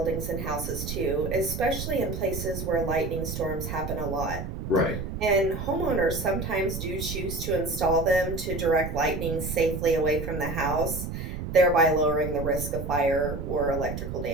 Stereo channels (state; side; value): noise; right; rumble, 6 dB below the sound